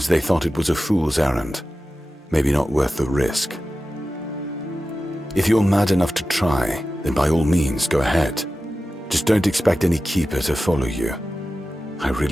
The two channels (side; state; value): both; normal; correlation 0.94